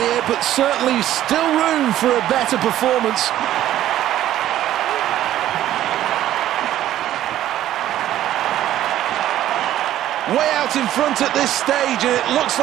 but certainly still room for a better performance. Way out in front at this stage, and it looks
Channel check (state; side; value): quieter; left; 12.9 dB